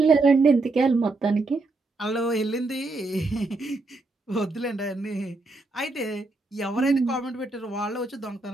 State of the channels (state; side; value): quieter; left; 3.3 dB